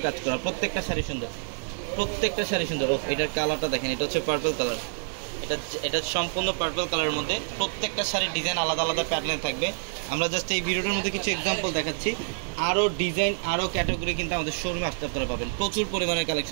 কাজ করা। প্রত্যেকটা শাড়ি সুন্দর। এটার কালারটা দেখেন, এটা হচ্ছে পার্পল কালার। এটা সম্পূর্ণ পার্পল কালারের মধ্যে। প্রত্যেকটা শাড়ির ডিজাইন আলাদা আলাদা প্যাটার্নে থাকবে। আমরা জাস্ট এই ভিডিওটার মধ্যে কিছু এক্সাম্পল দেখাচ্ছি। আরও ডিজাইন, আরও ক্যাটাগরি কিন্তু আমাদের শোরুমে আসতে আপনারা পাবেন। প্রচুর পরিমাণে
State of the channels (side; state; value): left; silent; digital silence